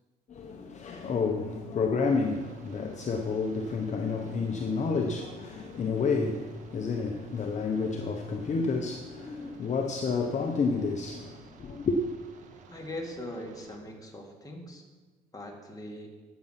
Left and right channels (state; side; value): quieter; right; 3.9 dB